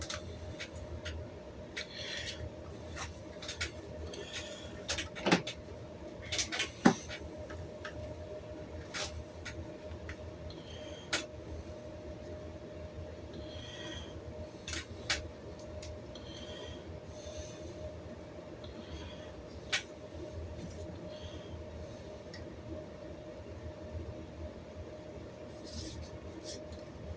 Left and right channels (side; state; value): both; identical; correlation 1.00